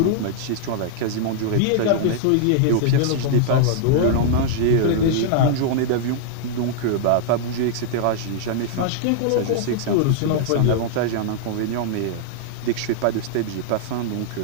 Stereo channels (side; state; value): both; different; correlation -0.01